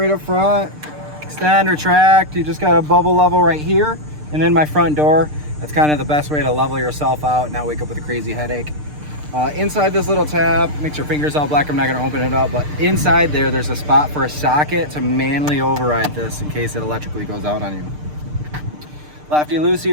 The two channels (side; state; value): left; late; 6.7 ms